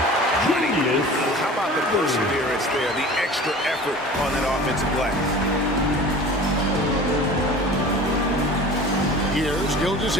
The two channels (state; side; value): normal; both; correlation 0.40